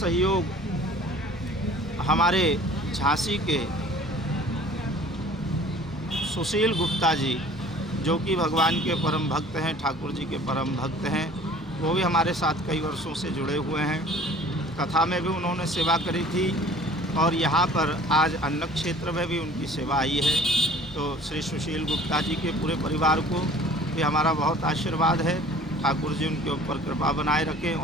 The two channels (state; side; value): normal; both; correlation 0.49